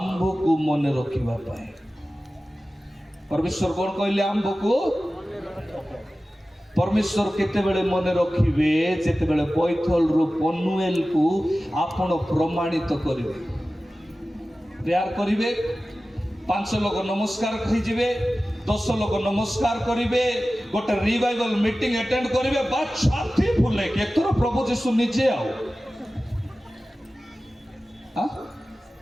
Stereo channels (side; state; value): both; normal; correlation 0.95